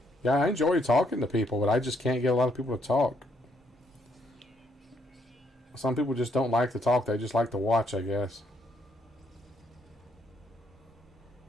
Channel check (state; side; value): normal; both; correlation 0.72